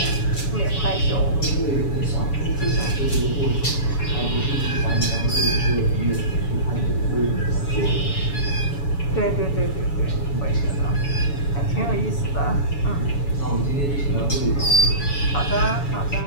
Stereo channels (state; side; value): late; right; 7.1 ms